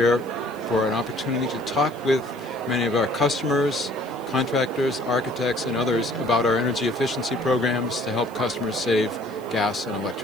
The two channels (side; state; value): left; noise; hiss, 27 dB below the sound